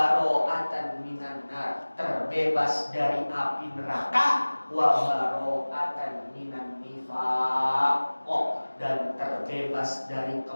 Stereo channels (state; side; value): inverted; both; correlation -1.00